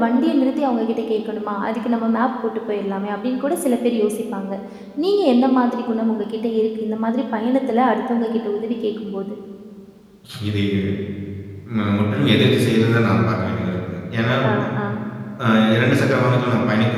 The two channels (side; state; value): both; identical; correlation 1.00